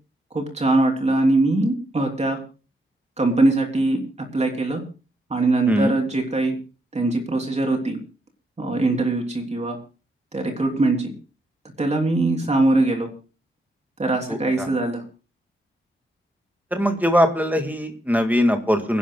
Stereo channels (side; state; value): both; normal; correlation 0.79